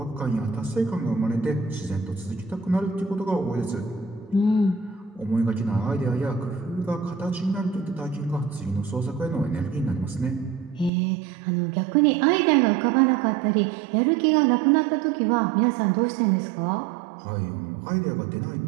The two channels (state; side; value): drops out; left; at 10.9 s